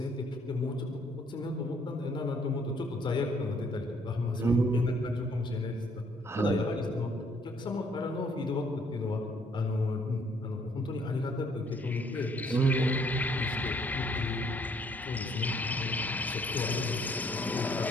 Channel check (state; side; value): normal; both; correlation 0.64